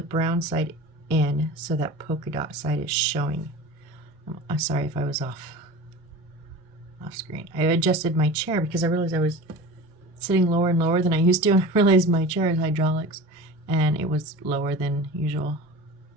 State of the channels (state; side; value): normal; both; correlation 0.34